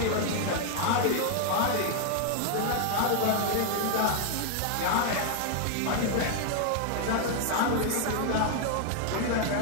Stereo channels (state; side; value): different; both; correlation 0.00